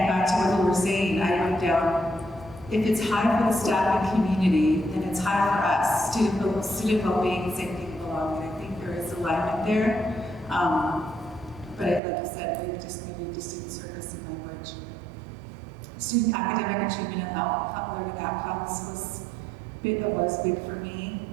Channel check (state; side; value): drops out; left; at 12.0 s